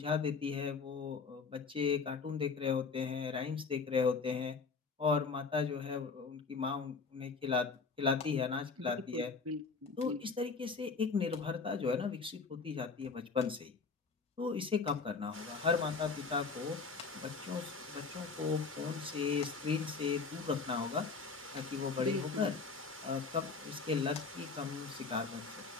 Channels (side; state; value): right; quieter; 4.8 dB